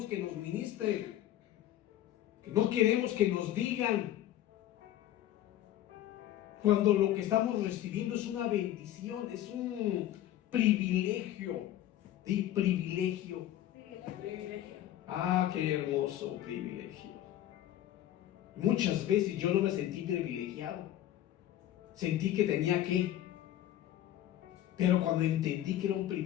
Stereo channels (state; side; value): quieter; right; 12.8 dB